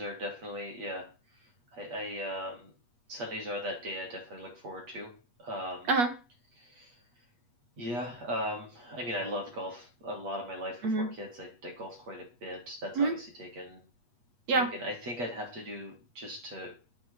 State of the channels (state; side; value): late; left; 8.4 ms